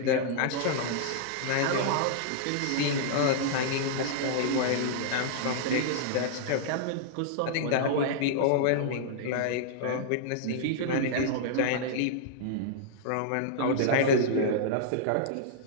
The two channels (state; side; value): different; both; correlation -0.02